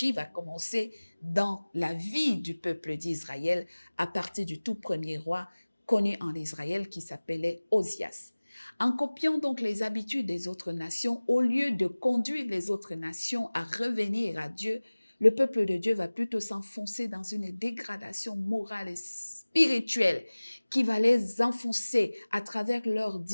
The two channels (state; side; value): inverted; both; correlation -1.00